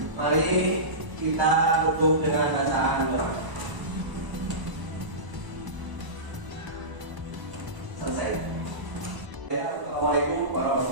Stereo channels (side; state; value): left; late; 1.0 ms